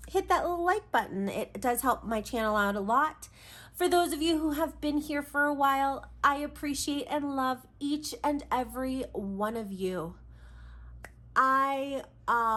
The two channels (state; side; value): identical; both; correlation 1.00